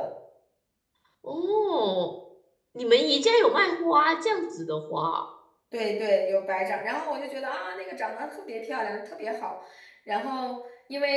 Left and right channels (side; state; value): both; identical; correlation 1.00